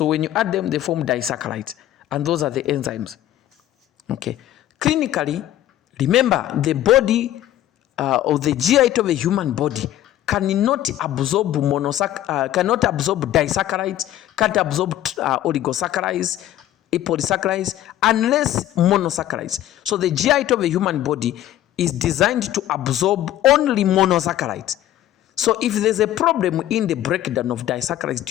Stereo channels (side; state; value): right; quieter; 12.8 dB